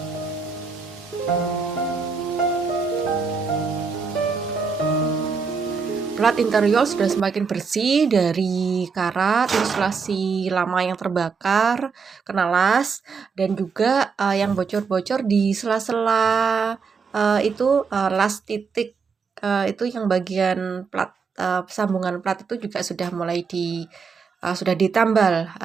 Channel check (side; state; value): left; quieter; 5.3 dB